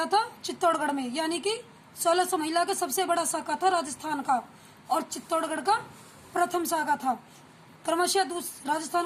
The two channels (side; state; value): both; identical; correlation 1.00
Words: था चित्तौड़गढ़ में, यानी कि 1600 महिला का सबसे बड़ा शाखा था राजस्थान का, और चित्तौड़गढ़ का प्रथम शाखा था। क्रमशः